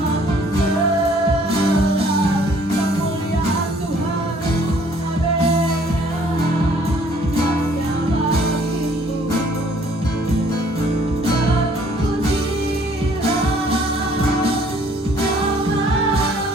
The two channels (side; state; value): both; normal; correlation 0.59